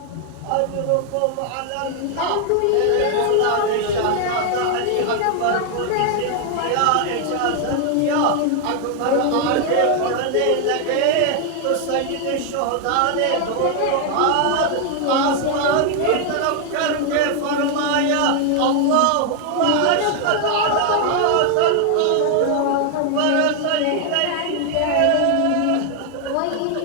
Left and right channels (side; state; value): both; different; correlation 0.00